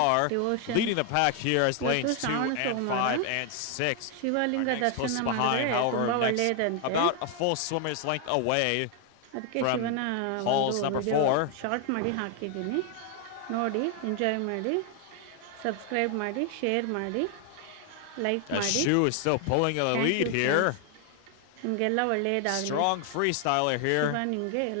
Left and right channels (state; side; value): different; both; correlation 0.00